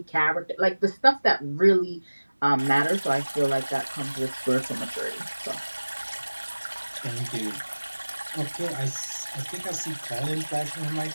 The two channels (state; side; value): inverted; both; correlation -1.00